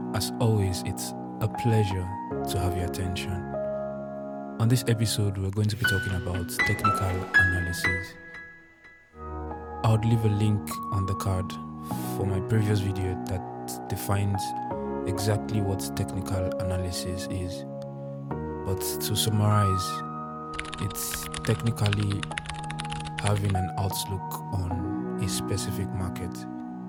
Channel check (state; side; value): identical; both; correlation 1.00